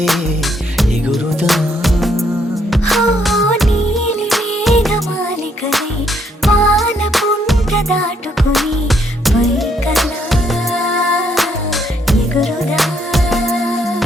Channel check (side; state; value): both; normal; correlation 0.71